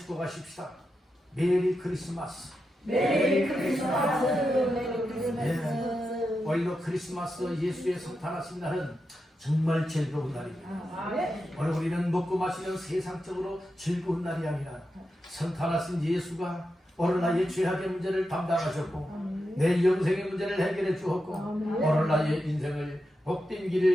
메리 크리스마스. 메리 크리스마스. 네. 오늘도 크리스마스 예수의 성탄하신 날은 정말 즐거운 날입니다. 오늘 우리는 먹고 마시는 세상적으로 즐거운 날이 아니라 성탄하신 예수가 오늘 나의 죄악의 문제를 담당하셨고 내 영생의 문제를 해결해 주었고 오늘 나의 인생을 복된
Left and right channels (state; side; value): normal; both; correlation 0.88